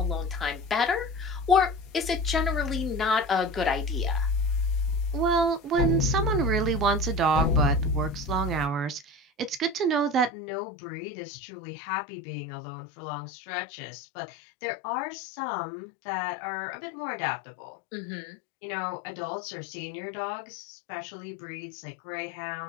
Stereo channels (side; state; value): right; drops out; at 10.3 s